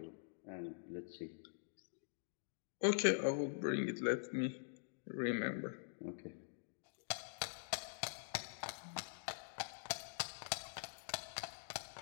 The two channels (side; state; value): right; silent; digital silence